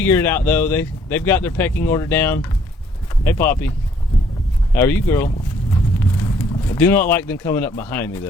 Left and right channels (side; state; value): both; normal; correlation 0.63